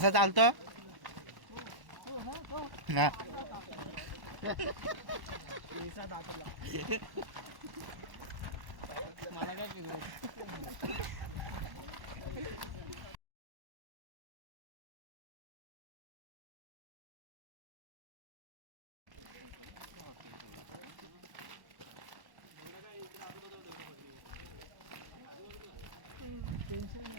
चालतो हो ना तो ना पैसा दाखवला. मला काय फिरवत टेन्शन नाही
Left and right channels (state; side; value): late; left; 1.1 ms